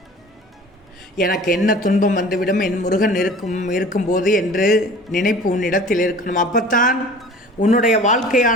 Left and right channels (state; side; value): normal; both; correlation 0.43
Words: எனக்கு என்ன துன்பம் வந்துவிடும், என் முருகன் இருக்கும்போது என்று நினைப்பு உன்னிடத்தில் இருக்கணும். அப்பத்தான் உன்னுடைய